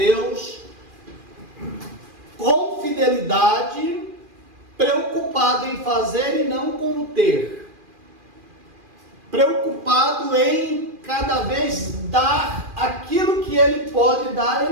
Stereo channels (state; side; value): late; left; 2.4 ms